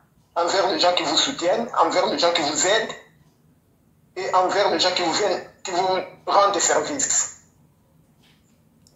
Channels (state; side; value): identical; both; correlation 1.00